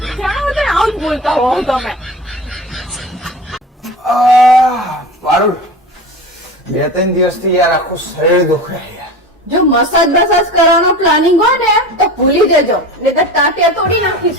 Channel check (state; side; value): normal; both; correlation 0.32